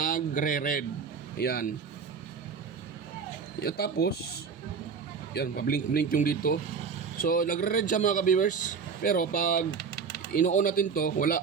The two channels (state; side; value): quieter; left; 5.8 dB